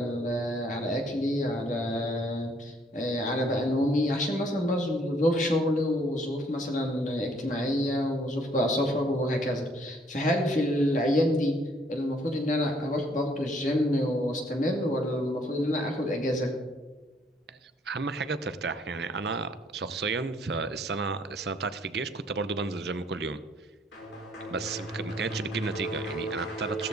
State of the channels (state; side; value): normal; both; correlation 0.64